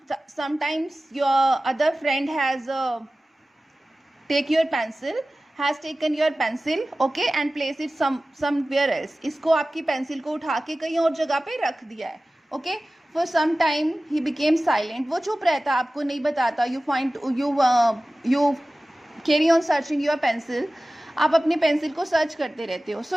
sometimes your other friend has taken your pencil, okay, and place it somewhere else. इसको आपकी पेंसिल को उठा के कहीं और जगह पे रख दिया है. okay, for some time he became silent. वो चुप रहता, आपको नहीं बताता. you carry on searching your pencil. आप अपनी पेंसिल को सर्च करते रहते हो. सो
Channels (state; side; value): normal; both; correlation 0.97